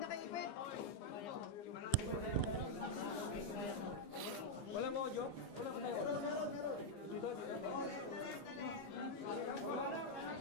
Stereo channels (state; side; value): late; right; 15 ms